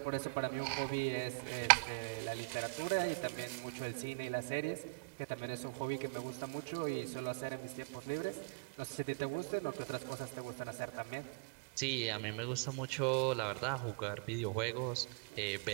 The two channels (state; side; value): quieter; left; 33.2 dB